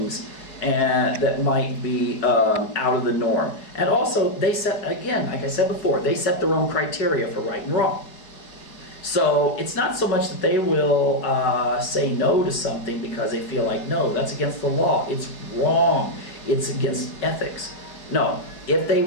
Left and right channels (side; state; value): right; late; 4.8 ms